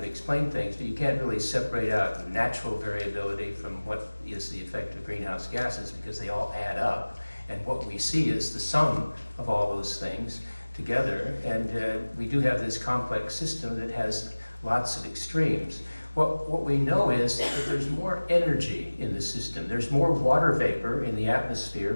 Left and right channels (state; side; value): inverted; both; correlation -1.00